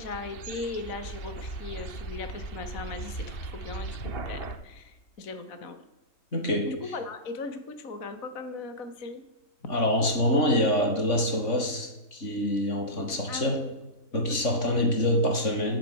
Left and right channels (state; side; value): late; right; 3.5 ms